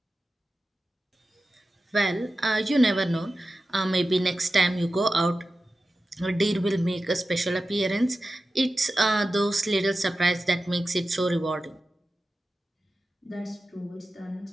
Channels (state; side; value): normal; both; correlation 0.94